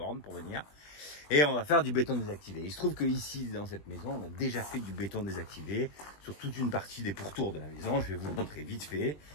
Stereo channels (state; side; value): late; right; 20 ms